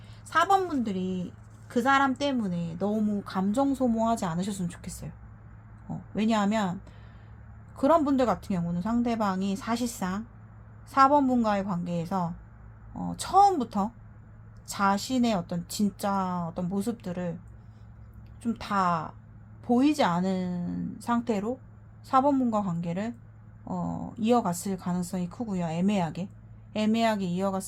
4번 분들이 그 사람 때문에 너무 감정 소모하지 않으셨으면 좋겠어요. 왜냐하면 그런 분들 같은 경우는 상대방이 사실상 4번 분과의 관계에서 처음부터 자신의 어떤 진짜 어떤 모습들을 좀 다 보이지 않은 상태로 4번 분과 관계를 이어갔을 가능성이 크고요. 애매하게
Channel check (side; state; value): both; identical; correlation 1.00